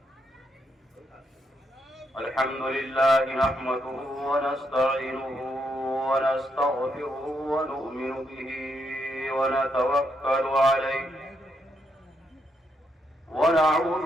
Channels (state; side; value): normal; both; correlation 0.78